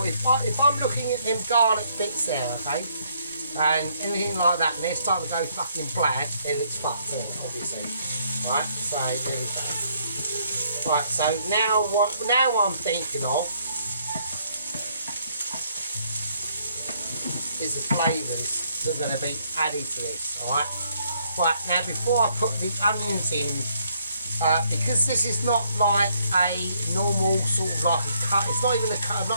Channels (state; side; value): inverted; both; correlation -0.69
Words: if I'm looking at them garlic bits there, okay, and anything like that, and they're starting to go fucking black, then it's fucked in, obviously. Right, so there we go. Right, so now I'm thinking of is the flavours that are going to be added to this. Alright. Right, now before I put the onions in, because this is not like a normal sort of like a cut, it's not even